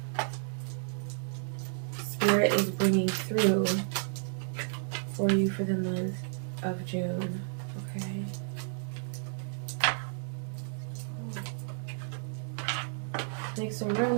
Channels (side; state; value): left; silent; digital silence